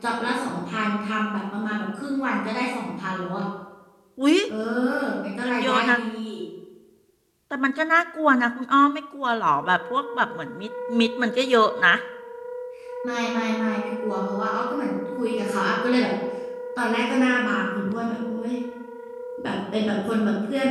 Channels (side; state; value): both; identical; correlation 1.00